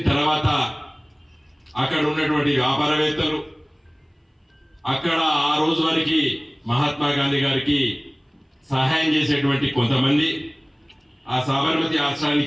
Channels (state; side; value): identical; both; correlation 1.00